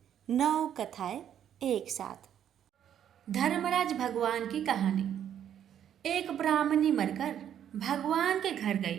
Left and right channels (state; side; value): quieter; left; 9.7 dB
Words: 9 कथाएं एक साथ। धर्मराज भगवान की कहानी। एक ब्राह्मणी मरकर भगवान के घर गई।